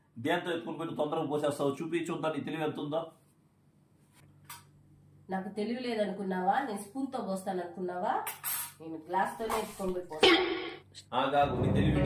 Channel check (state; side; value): identical; both; correlation 1.00